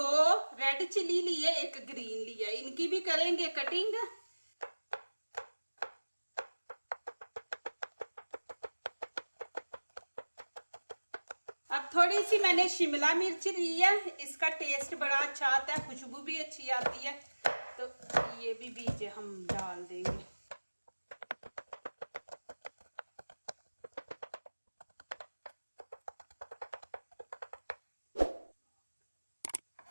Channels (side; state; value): both; inverted; correlation -1.00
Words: रेड चिली ली है, 1 ग्रीन लिया है। इनकी भी करेंगे कटिंग। अब थोड़ी सी मैंने शिमला मिर्च ली है, इसका टेस्ट बड़ा अच्छा आता है, खुशबू भी अच्छी आती है। तो ये भी बीज हम डाल देंगे।